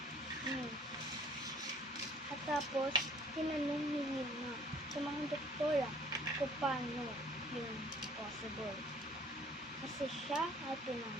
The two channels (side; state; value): both; normal; correlation 0.56